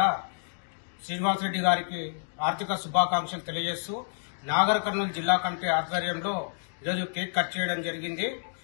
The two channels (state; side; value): silent; right; digital silence